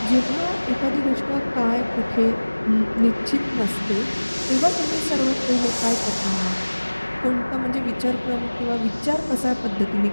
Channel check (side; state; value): both; inverted; correlation -1.00